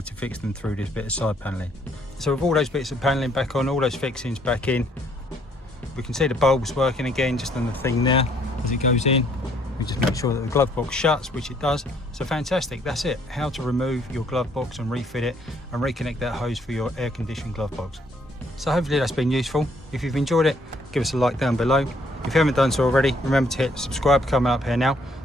to fix them through this bit of side paneling. So with all those bits of paneling back on, all those fixings back in, we can see the bulbs working again just on the thing there as it goes in. We just make sure that the glove box shuts, which it does. So fantastic, that's it. How to remove your glove box and refit it and reconnect that hose for your air conditioned glove box. So hopefully that's been useful. If you've enjoyed it, give us a like down below. If you haven't done so already, remember to hit subscribe coming up here now.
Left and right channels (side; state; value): both; normal; correlation 0.66